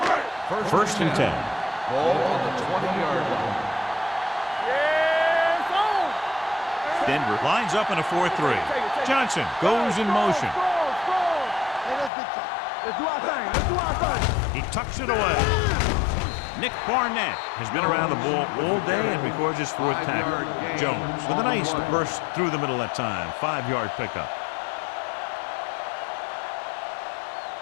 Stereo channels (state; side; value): drops out; right; at 12.1 s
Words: First and 10. Ball on the 20-yard line. Denver lines up in a 4-3. Johnson goes in motion. Let's do our thing. He tucks it away. Nick Barnett has been around the ball all day and records his 4th tackle. Jones with a nice burst through the middle that time. 5-yard pickup.